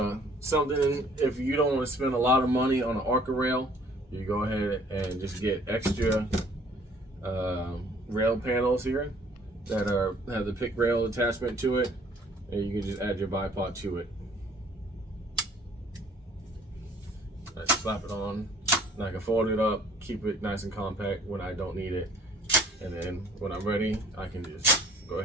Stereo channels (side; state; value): both; normal; correlation 0.56